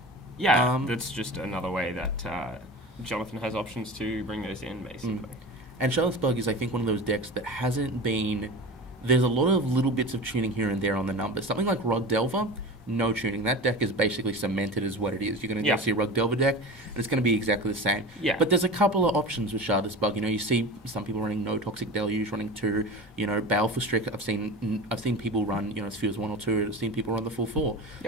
Yeah, that's just another way that Jonathan has options to bring those in, basically. And Shardless BUG is, I think, one of those decks that hasn't been... There's a lot of little bits of tuning here and there on the numbers. Something like Rug Delver, no tuning. That deck is basically cemented as what it is. You're going to go see a Rug Delver deck, and it's going to be exactly the same. Yeah. But there's a couple of options with Shardless BUG. You see some people running No Toxic Deluge, running 2. Baleful Strict. I've seen people run, Spheres 1 or 2. I've seen people run the full 4.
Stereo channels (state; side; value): normal; both; correlation 0.31